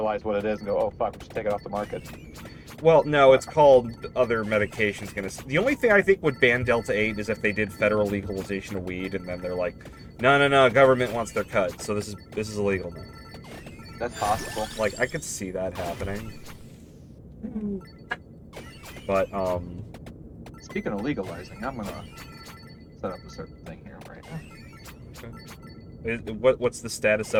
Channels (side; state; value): both; identical; correlation 1.00